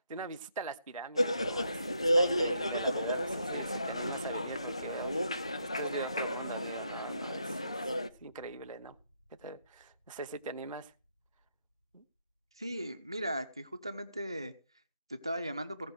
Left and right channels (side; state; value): both; inverted; correlation -0.77